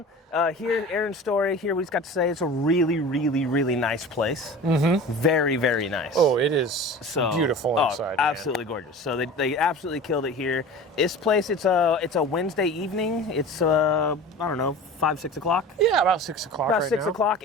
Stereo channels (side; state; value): both; normal; correlation 0.36